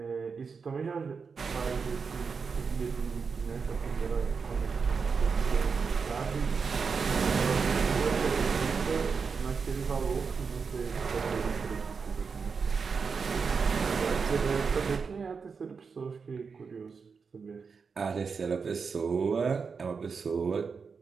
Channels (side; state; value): left; quieter; 5.4 dB